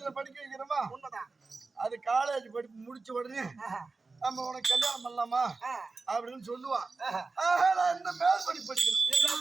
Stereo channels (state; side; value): quieter; left; 3.9 dB